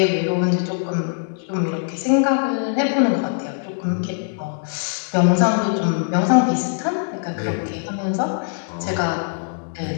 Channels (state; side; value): silent; right; digital silence